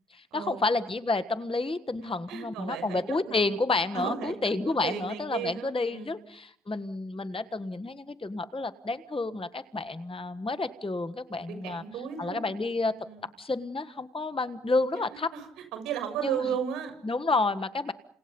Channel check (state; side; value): normal; both; correlation 0.65